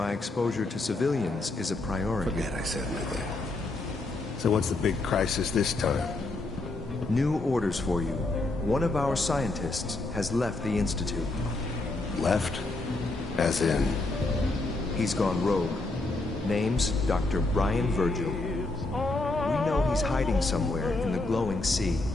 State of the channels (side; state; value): right; quieter; 3.0 dB